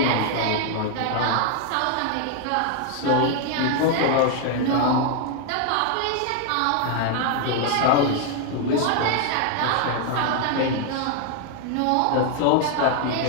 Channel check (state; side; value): different; both; correlation 0.00